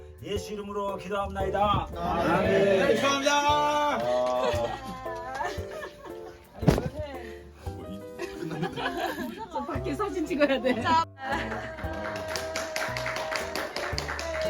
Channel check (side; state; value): both; identical; correlation 1.00